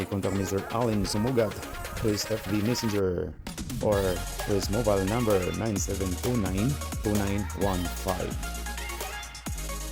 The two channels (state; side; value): identical; both; correlation 1.00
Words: contact Mr. Allen Sumugat to his FB Messenger or to his mobile number 9729-2915.